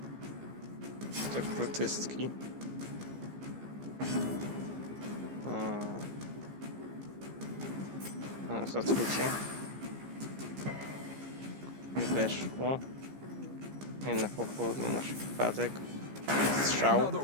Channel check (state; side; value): late; left; 15 ms